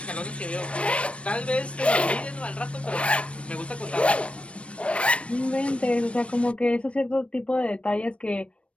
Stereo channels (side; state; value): right; late; 0.061 ms